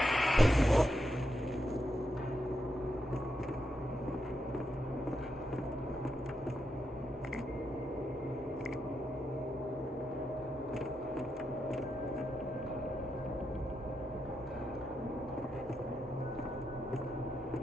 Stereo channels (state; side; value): normal; both; correlation 0.84